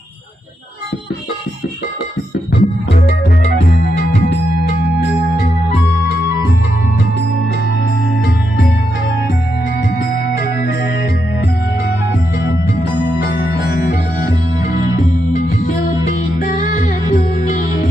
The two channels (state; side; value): normal; both; correlation 0.83